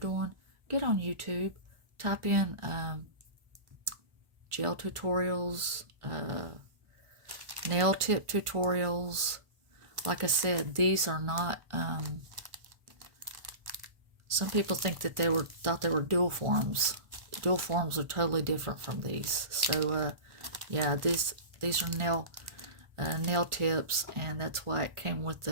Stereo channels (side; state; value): left; late; 1.4 ms